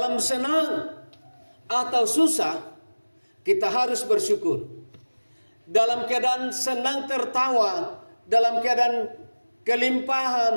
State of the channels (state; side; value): inverted; both; correlation -1.00